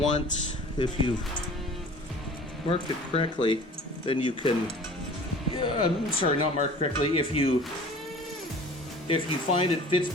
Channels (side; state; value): both; normal; correlation 0.45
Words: if you've marked it correctly, then you can. I'm sorry, not marked correctly. If you find it fits